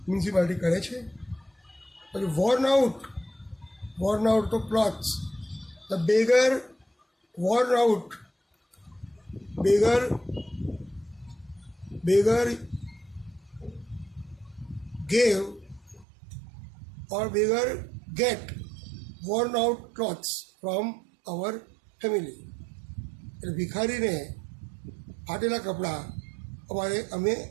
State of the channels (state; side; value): drops out; left; at 16.1 s